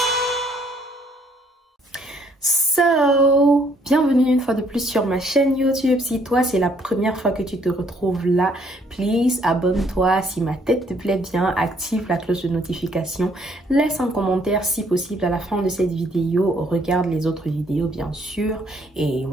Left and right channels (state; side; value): normal; both; correlation 0.65